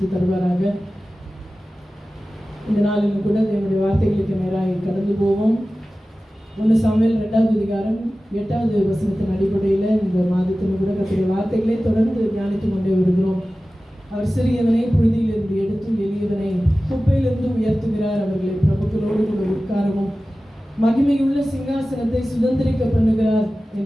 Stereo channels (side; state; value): both; normal; correlation 0.96